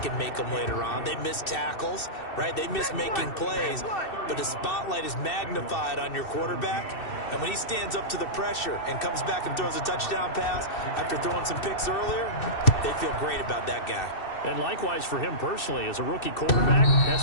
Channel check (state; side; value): late; right; 2.6 ms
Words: and make them later on. They miss tackles, right? They miss making plays, but the spotlight is magnified on your quarterback. And when he stands up to the pressure and comes back and throws a touchdown pass after throwing some picks earlier, they feel great about that guy. And likewise for him personally, as a rookie quarterback, has